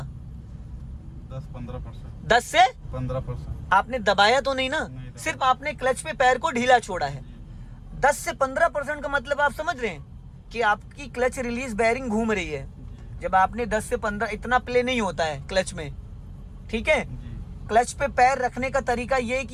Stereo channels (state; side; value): identical; both; correlation 1.00